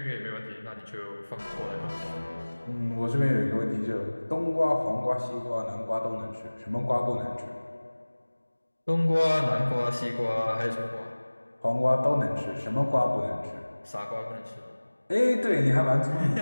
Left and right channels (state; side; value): inverted; both; correlation -1.00